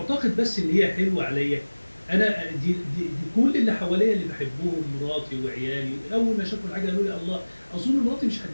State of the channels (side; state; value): both; inverted; correlation -1.00